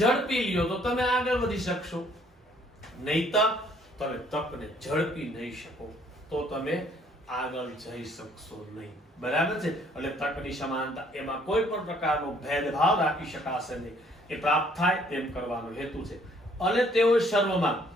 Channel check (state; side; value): normal; both; correlation 0.62